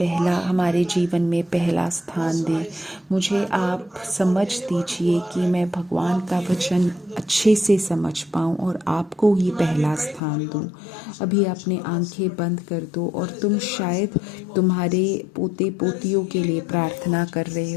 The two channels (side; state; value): right; drops out; at 10.2 s